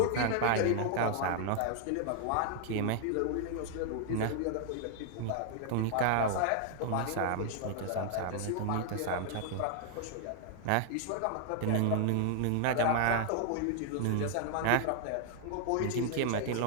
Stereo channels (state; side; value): different; both; correlation 0.00